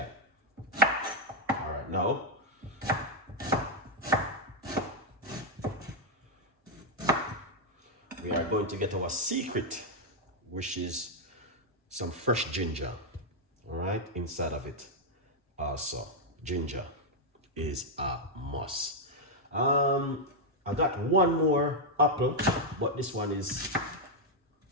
All right, now we are going to get our secret, which is some fresh ginger. All right, inside of it. Also, ginger is a must. I got 1 more apple, but this one is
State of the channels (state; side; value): normal; both; correlation -0.01